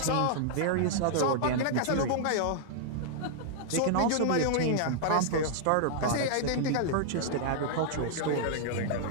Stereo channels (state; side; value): different; both; correlation -0.01